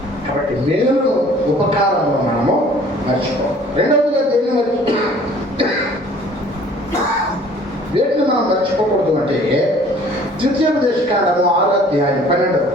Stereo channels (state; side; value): normal; both; correlation 0.53